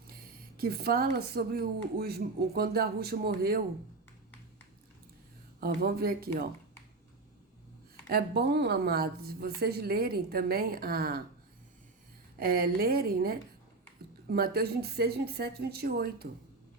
Que fala sobre quando Yahushua morreu. Ó, vamos ver aqui, ó. É bom, amados, vocês lerem também, lerem, né? Mateus 26, 27, 28,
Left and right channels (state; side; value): quieter; left; 3.5 dB